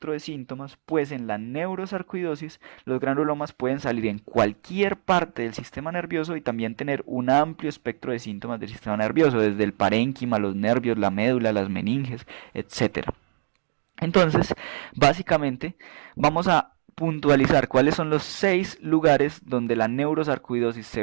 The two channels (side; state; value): left; silent; digital silence